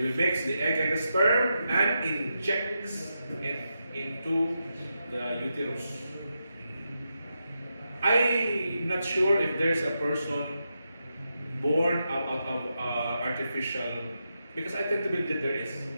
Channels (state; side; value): inverted; both; correlation -0.86